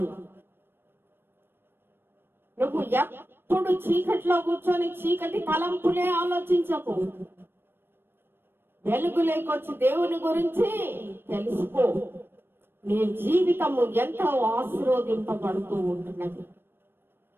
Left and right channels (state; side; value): late; left; 0.10 ms